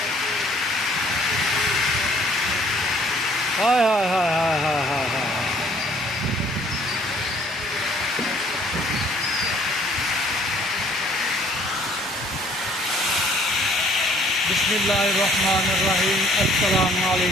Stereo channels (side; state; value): both; normal; correlation 0.59